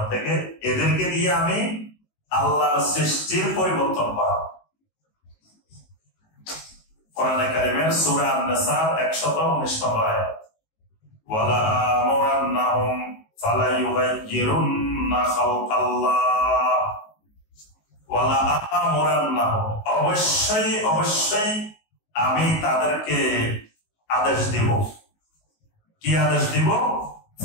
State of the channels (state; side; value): late; right; 19 ms